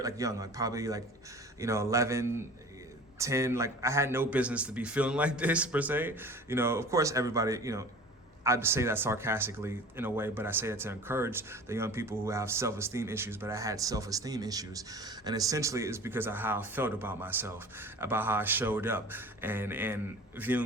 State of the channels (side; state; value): both; normal; correlation 0.41